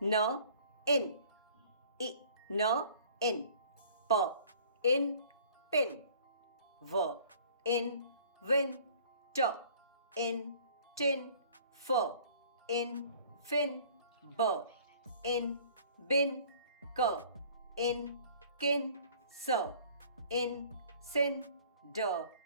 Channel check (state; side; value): inverted; both; correlation -0.52